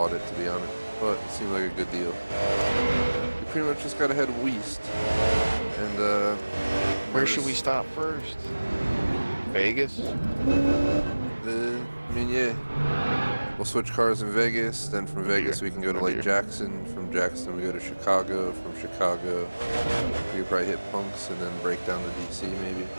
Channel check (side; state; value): both; inverted; correlation -1.00